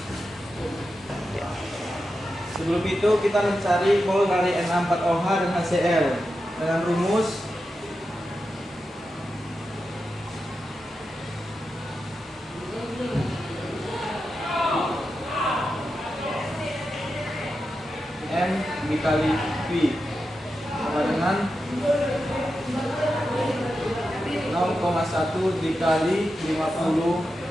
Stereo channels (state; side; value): normal; both; correlation 0.89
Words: Sebelum itu kita mencari mol dari NH4OH dan HCl dengan rumus M dikali V sama dengan 0,1 dikali 50